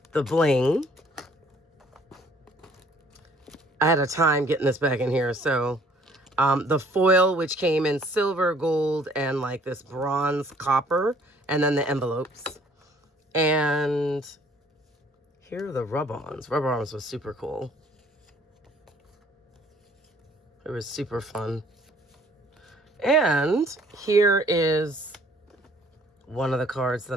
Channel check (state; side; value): normal; both; correlation 0.58